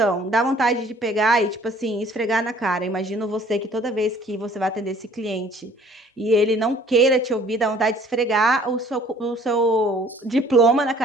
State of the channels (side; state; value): both; normal; correlation 0.55